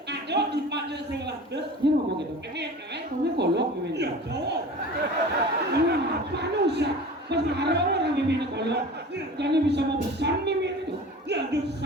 à đó thì bạn lên xem là được Dia ngomong gitu. cái biển cái Kamu kolok meme. hiểu chỗ Manusia. Masa ada orang meme kolok. Karena bisa mau pesan meme itu. hiểu được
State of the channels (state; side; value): normal; both; correlation 0.38